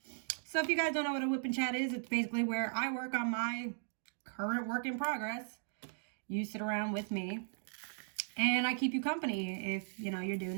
So if you guys don't know what a Whippin' Chat is, it's basically where I work on my current work in progress. You sit around with me and I keep you company if, you know, you're doing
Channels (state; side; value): silent; left; digital silence